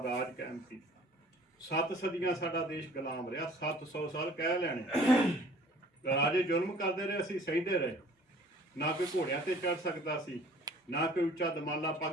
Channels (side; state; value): both; normal; correlation 0.51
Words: ਰਾਜ ਕਾਇਮ ਕੀਤਾ। 7 ਸਦੀਆਂ ਸਾਡਾ ਦੇਸ਼ ਗੁਲਾਮ ਰਿਹਾ, 700 ਸਾਲ ਕਹਿ ਲੈਣੇ। ਰਾਜੇ ਜ਼ੁਲਮ ਕਰਦੇ ਰਹੇ, ਅਸੀਂ ਸਹਿੰਦੇ ਰਹੇ। ਨਾ ਕੋਈ ਘੋੜਿਆਂ ਤੇ ਚੜ ਸਕਦਾ ਸੀ, ਨਾ ਕੋਈ ਉੱਚਾ ਦਮਾਲਾ